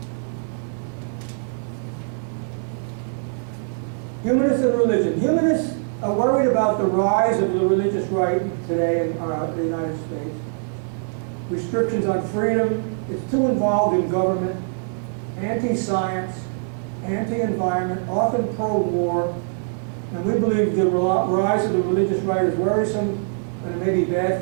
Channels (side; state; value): left; silent; digital silence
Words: Humanists and religion. Humanists are worried about the rise of the religious right today in the United States. Restrictions on freedom. It's too involved in government. Anti-science, anti-environment, often pro-war. And we believe the rise of the religious right is worrisome and it may be bad